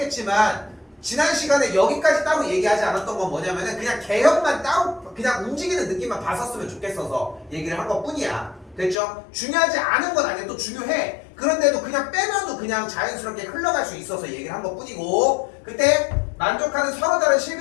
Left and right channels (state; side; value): drops out; right; at 9.0 s